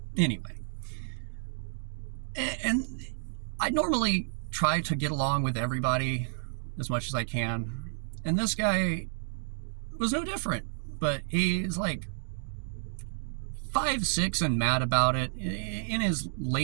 Anyway. And I normally try to get along with everybody as much as I can. And this guy was no different. But he's like 5'6" and mad about it. In his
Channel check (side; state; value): left; silent; digital silence